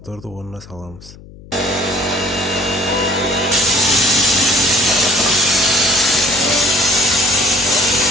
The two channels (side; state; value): left; noise; hum, 20 dB below the sound